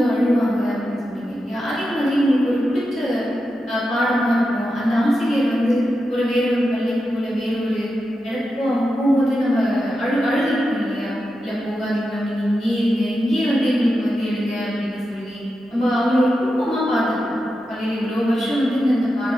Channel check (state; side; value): normal; both; correlation 0.89